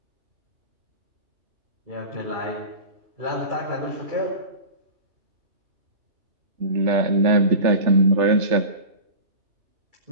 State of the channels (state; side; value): late; left; 3.3 ms